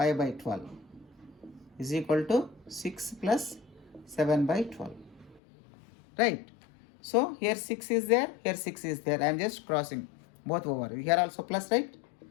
by 12 is equal to 6 plus 7 by 12. Right. So here 6 is there, here 6 is there. I am just crossing both over. Here also plus, right?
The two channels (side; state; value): right; drops out; at 5.4 s